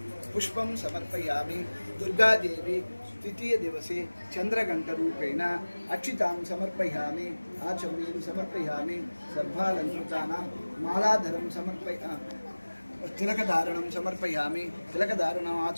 पुष्पं समर्पयामि दुर्गादेवी तृतीय दिवसे चन्द्रघण्टरूपेण अक्षितां समर्पयामि आचमनीं समर्पयामि सर्वालङ्कृतानां मालाधरं तिलकधारणं समर्पयामि तिलकधारणम्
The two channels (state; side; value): inverted; both; correlation -1.00